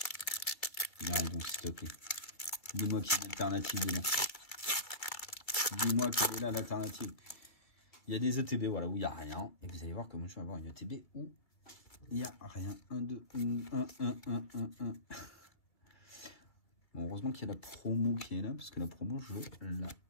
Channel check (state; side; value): late; right; 2.1 ms